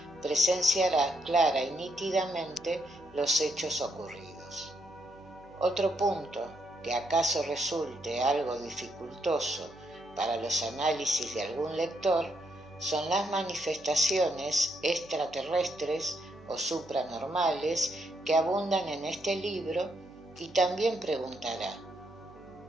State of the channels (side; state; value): right; noise; hum, 24 dB below the sound